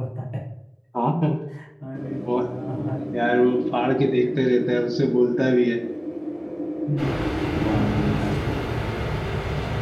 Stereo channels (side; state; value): both; identical; correlation 1.00